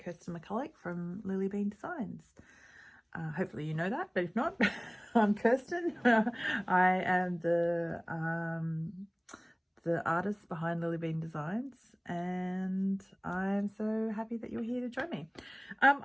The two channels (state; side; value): identical; both; correlation 1.00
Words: McCulloch from LilliBean Designs. Hopefully you know that, but if not, I'm Kirsten. I am the artist behind LilliBean Designs, and I'm so happy that you're here to join me. I